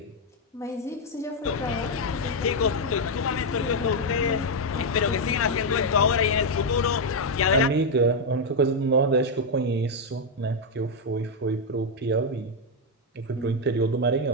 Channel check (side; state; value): both; normal; correlation 0.01